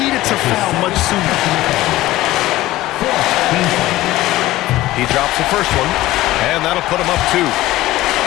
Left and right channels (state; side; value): quieter; right; 16.7 dB